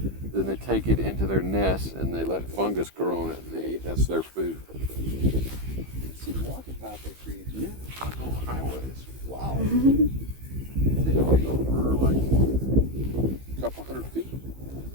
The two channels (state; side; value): late; left; 15 ms